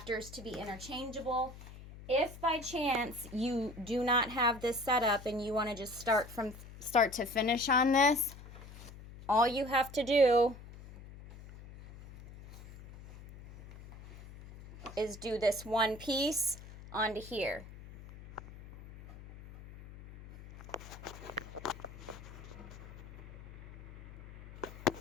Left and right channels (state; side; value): noise; left; hum, 16 dB below the sound